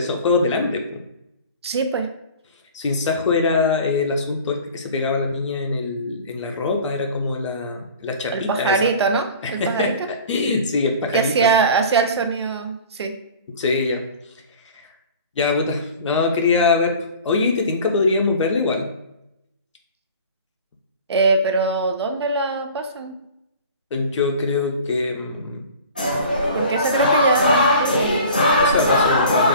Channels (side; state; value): both; inverted; correlation -0.42